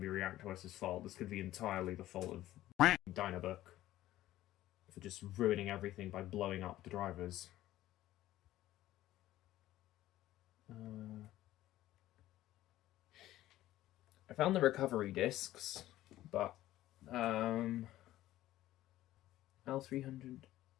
be ReactOS's fault. This could be entirely the fault of Dynabook for just ruining everything by blowing up the drivers. I found the recovery discs, but L300.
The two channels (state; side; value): quieter; right; 14.7 dB